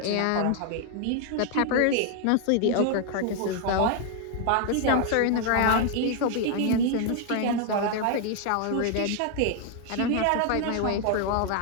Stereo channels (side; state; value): both; different; correlation 0.00